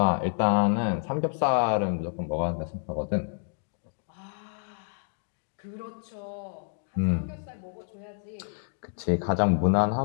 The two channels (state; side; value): silent; right; digital silence